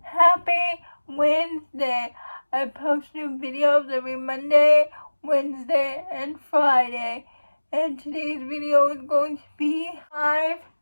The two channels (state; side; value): inverted; both; correlation -1.00